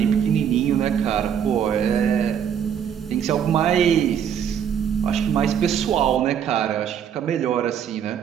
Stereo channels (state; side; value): quieter; left; 8.6 dB